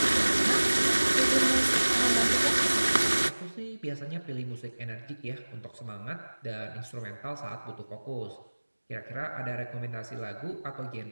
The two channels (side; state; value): both; inverted; correlation -1.00